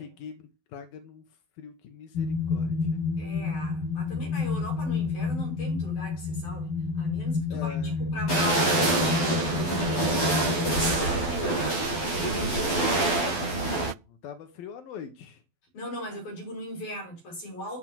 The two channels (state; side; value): late; right; 12 ms